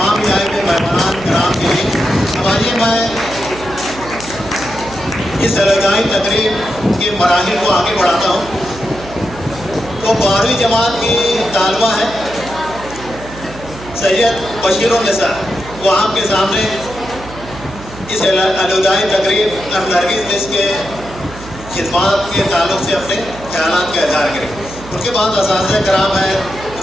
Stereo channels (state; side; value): noise; right; hum, 15 dB below the sound